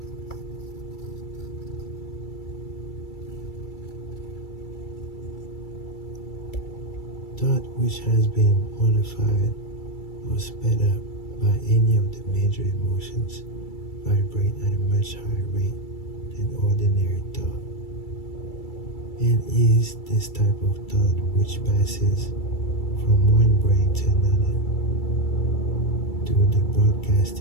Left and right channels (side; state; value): right; late; 2.3 ms